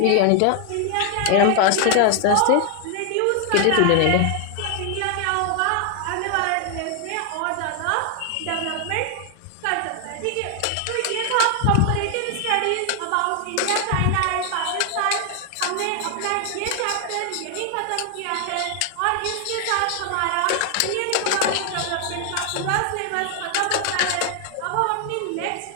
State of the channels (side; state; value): both; different; correlation 0.00